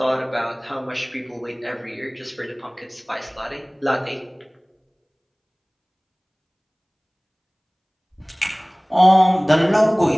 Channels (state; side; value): identical; both; correlation 1.00